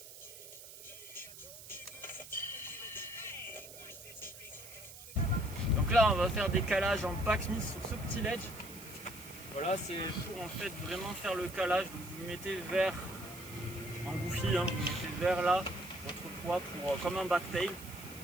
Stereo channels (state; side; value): noise; right; hiss, 15 dB below the sound